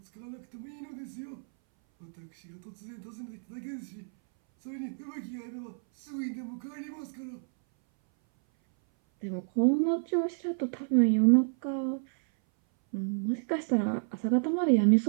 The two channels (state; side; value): silent; left; 58 dB below the other